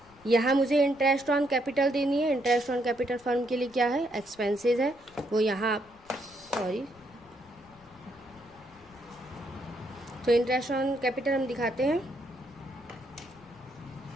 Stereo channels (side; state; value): left; noise; rumble, 27 dB below the sound